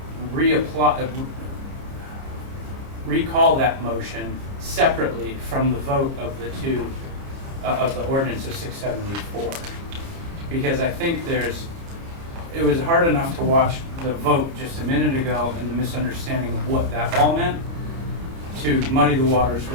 recall that motion separately from the vote of the two, of the ordinance of 674. Because I think it was hard enough to watch the vote just a minute ago and the misunderstanding of what that all meant, to muddy the waters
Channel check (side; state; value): left; late; 30 ms